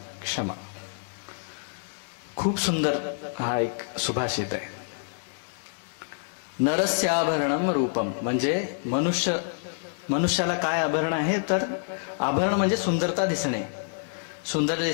क्षमा। खूप सुंदर हा एक सुभाषित आहे। नरस्य आभरणम रूपम म्हणजे मनुष्याला काय आभरण आहे, तर आभरण म्हणजे सुंदरता दिसणे, सुंदर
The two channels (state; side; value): silent; right; digital silence